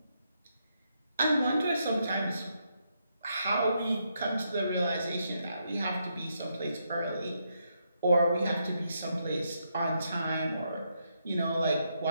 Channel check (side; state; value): both; inverted; correlation -0.79